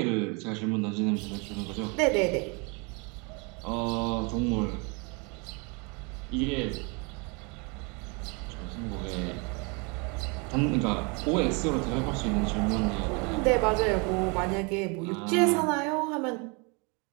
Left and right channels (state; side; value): quieter; left; 31.5 dB